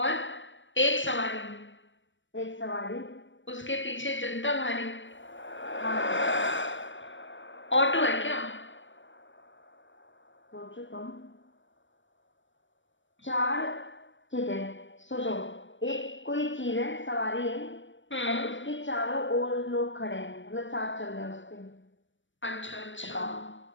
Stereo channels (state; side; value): late; right; 0.55 ms